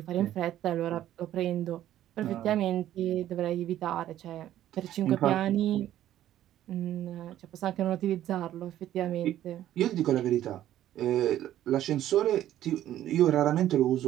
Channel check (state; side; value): quieter; left; 12.5 dB